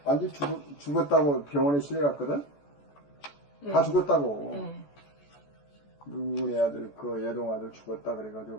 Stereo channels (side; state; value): right; late; 14 ms